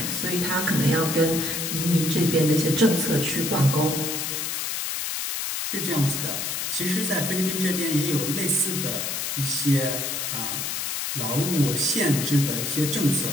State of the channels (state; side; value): noise; left; hiss, 2 dB below the sound